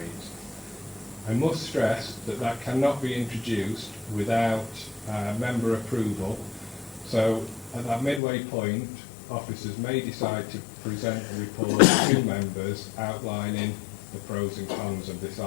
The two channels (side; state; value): right; drops out; at 8.2 s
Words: I must stress that that cannot be introduced without member approval. So at that midway point, officers may decide to present a report to members outlining the pros and cons of this